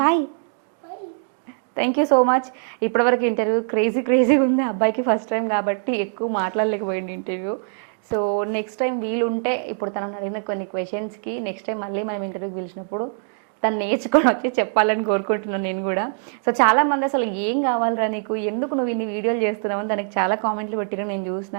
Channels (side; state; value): left; silent; digital silence